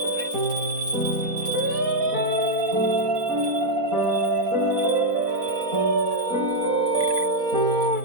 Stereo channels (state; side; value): late; left; 4.1 ms